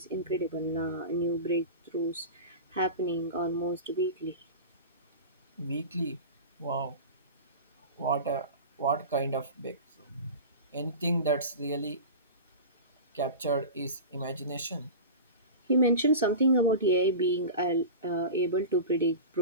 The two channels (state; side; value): inverted; both; correlation -0.31